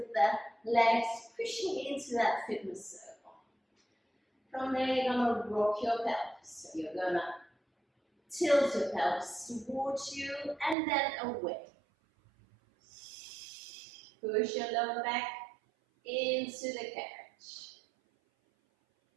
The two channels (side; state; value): left; drops out; at 10.8 s